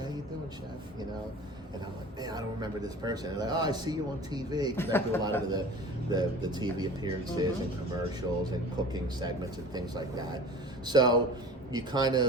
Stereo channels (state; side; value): normal; both; correlation 0.40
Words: you doing, chef? And I'm like, man, I don't remember this person. And they're like, oh, I see you on TV, because I do a lot of the TV appearances and commercials and cooking segments and things like that. So you kind